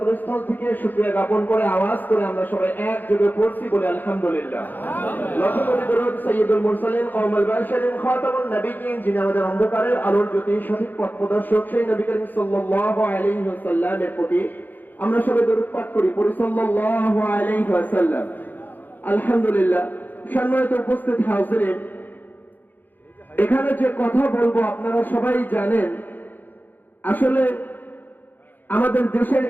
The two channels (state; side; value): late; right; 0.087 ms